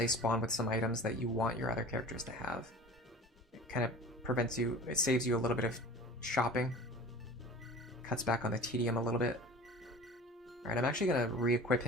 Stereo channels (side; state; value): both; normal; correlation 0.39